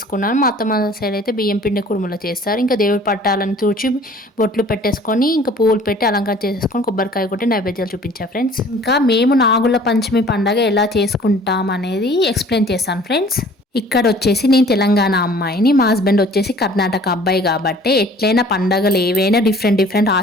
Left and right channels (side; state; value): both; normal; correlation 0.51